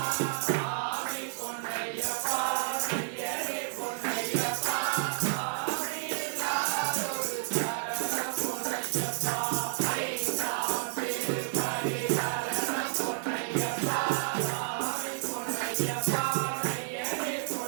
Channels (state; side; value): silent; left; 57 dB below the other